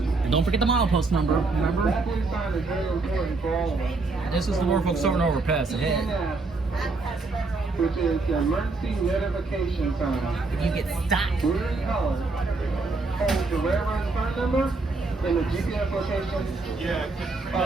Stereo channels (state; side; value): quieter; left; 3.7 dB